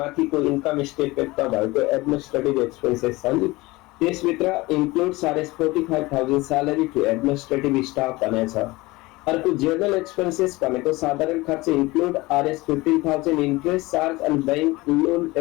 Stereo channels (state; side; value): quieter; right; 21.5 dB